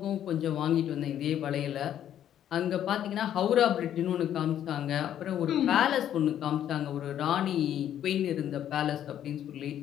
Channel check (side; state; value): right; quieter; 10.6 dB